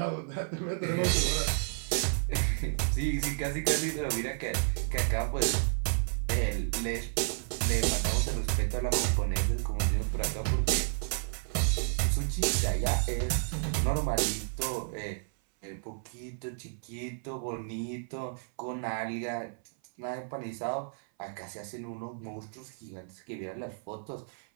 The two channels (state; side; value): silent; left; 57 dB below the other